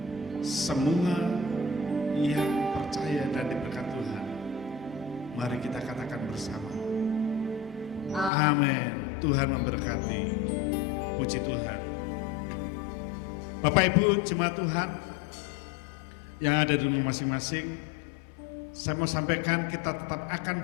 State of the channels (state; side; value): drops out; right; at 8.3 s